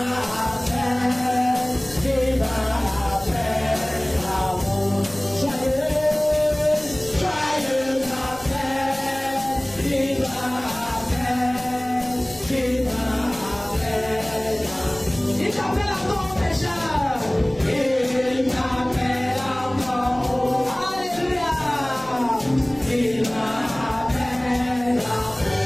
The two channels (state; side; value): noise; left; rumble, 22 dB below the sound